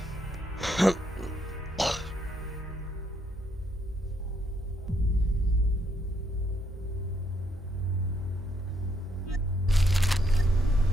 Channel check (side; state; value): both; normal; correlation 0.74